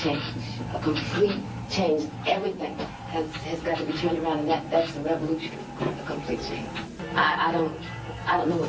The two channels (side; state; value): both; identical; correlation 1.00